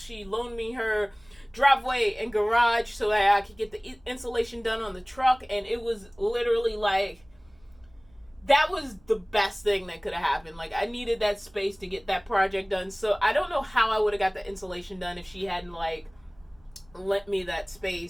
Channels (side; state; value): right; noise; rumble, 30 dB below the sound